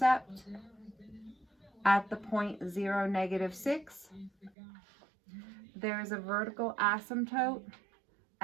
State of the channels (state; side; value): drops out; left; at 4.5 s